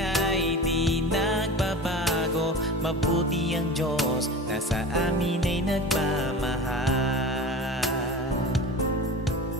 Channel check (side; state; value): both; normal; correlation 0.33